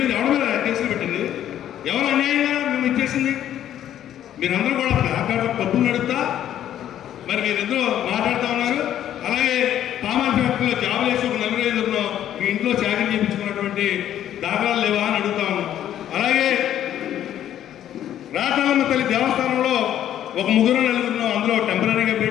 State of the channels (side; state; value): right; quieter; 11.2 dB